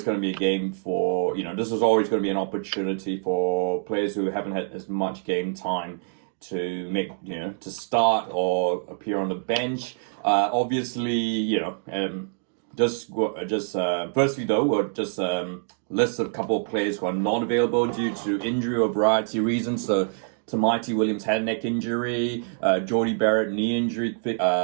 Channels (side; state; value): left; silent; digital silence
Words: going to be a game for, this was always going to be an opportunity for players who haven't had as much game time to make, to start or appear on the bench. Obviously, just firstly though, we'll just list a couple of players who are not available due to injury or variety of reasons. So Tamati Williams had a neck injury, Jordy Barrett knee injury,